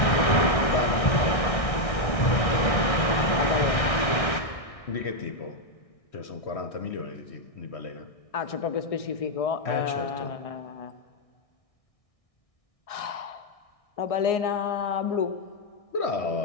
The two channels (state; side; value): late; right; 1.6 ms